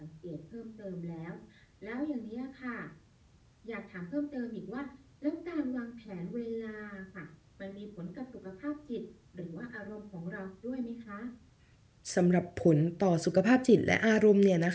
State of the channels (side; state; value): both; identical; correlation 1.00